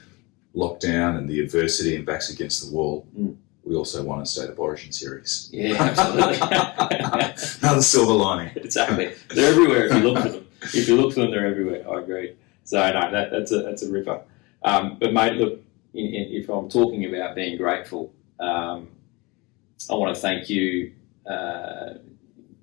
lockdown and the adversity and backs against the wall, we also won a State of Origin series. Yeah, absolutely. Another silver lining. Exactly. They're everywhere if you look for them. If you look for them, they're everywhere. I agree. So no, that's a ripper. But mate, look, if I'm talking about being grateful, I want to thank you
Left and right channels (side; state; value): right; quieter; 25.6 dB